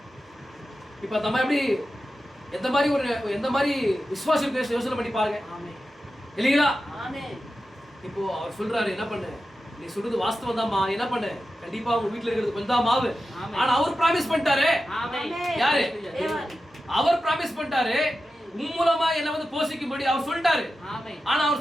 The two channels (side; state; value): both; normal; correlation 0.92